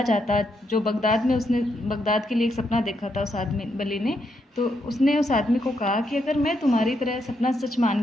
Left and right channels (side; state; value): both; normal; correlation 0.79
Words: जाता, जो बगदाद में उसने बगदाद के लिए एक सपना देखा था उस आदमी वली ने, तो उसने उस आदमी को कहा कि अगर मैं तुम्हारी तरह सपना सच